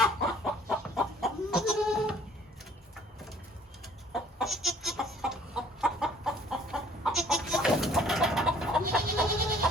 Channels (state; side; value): normal; both; correlation 0.56